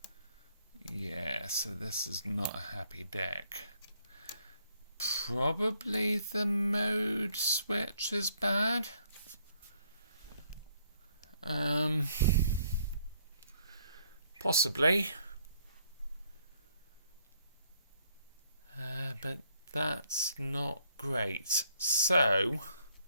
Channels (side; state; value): both; inverted; correlation -0.67